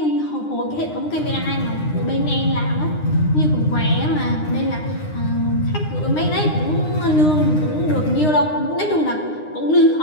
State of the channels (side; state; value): right; late; 9.8 ms